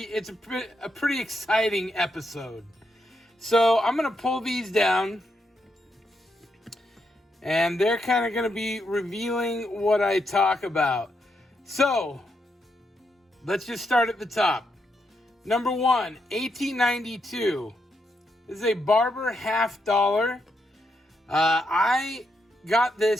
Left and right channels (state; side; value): normal; both; correlation 0.81